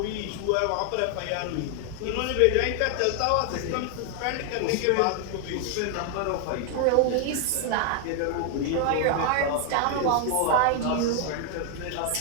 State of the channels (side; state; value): both; different; correlation 0.00